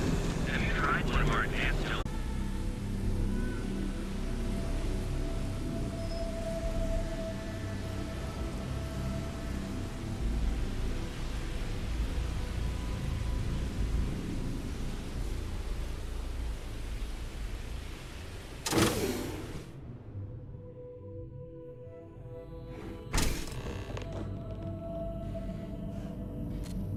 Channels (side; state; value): both; identical; correlation 1.00